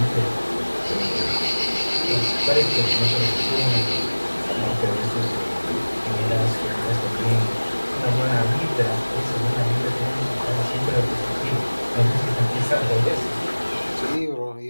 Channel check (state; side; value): inverted; both; correlation -1.00